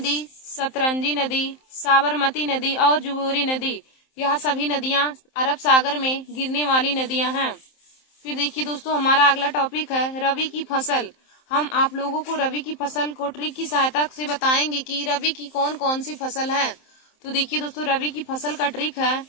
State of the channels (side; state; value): right; late; 27 ms